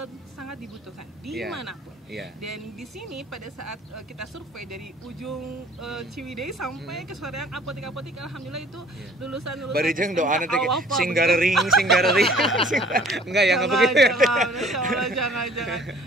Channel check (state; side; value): normal; both; correlation 0.53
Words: sangat dibutuhkan dimanapun. Dan di sini pada saat kita survei dari ujung Ciwidey sampai ke soreang apotek-apotek, alhamdulillah itu lulusan Barijeng doa nanti singgarering enggak ya, enggak begitu ya. Jangan.